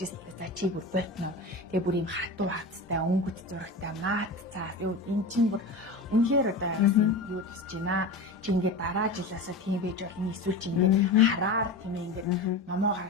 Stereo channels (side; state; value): right; quieter; 3.0 dB